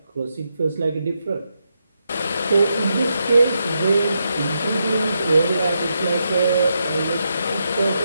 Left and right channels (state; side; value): inverted; both; correlation -0.83